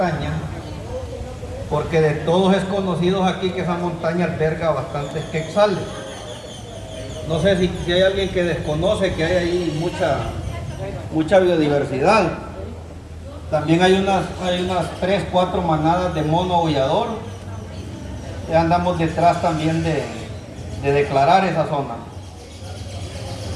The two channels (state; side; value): identical; both; correlation 1.00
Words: porque de todos es conocido aquí que esa montaña alberga bastantes quetzales. No sé si hay alguien que desconoce que hay ahí mucha biodiversidad. También hay unas 3, 4 manadas de mono aullador. Ya andamos detrás también de declarar esa zona.